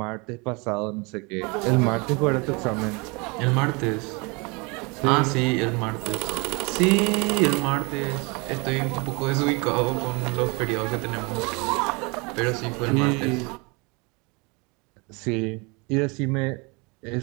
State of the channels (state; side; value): quieter; left; 29.0 dB